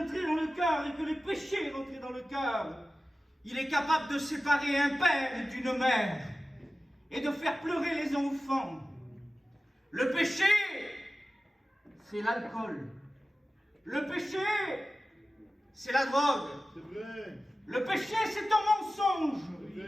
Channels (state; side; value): normal; both; correlation 0.95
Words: dans le cœur et que le péché est rentré dans le cœur, il est capable de séparer un père d'une mère et de faire pleurer les enfants. Le péché, c'est l'alcool. Le péché, c'est la drogue. Le péché, c'est ton mensonge.